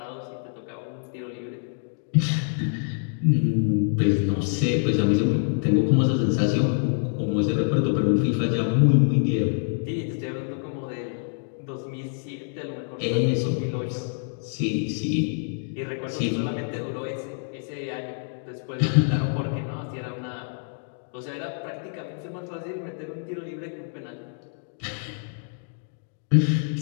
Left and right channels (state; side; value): silent; right; digital silence